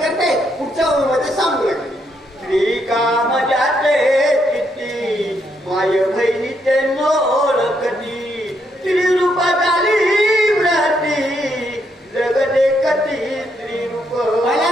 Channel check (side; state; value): both; normal; correlation 0.76